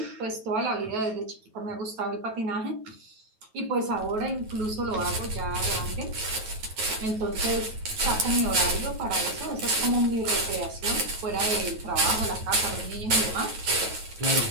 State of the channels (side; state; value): left; late; 9.2 ms